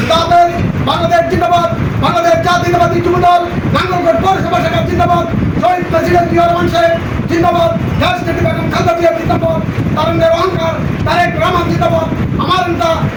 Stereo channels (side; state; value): both; identical; correlation 1.00